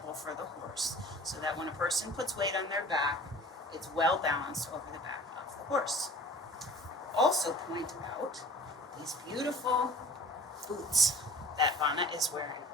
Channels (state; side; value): normal; both; correlation 0.45